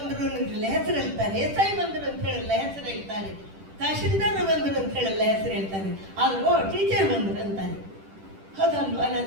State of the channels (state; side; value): late; left; 10 ms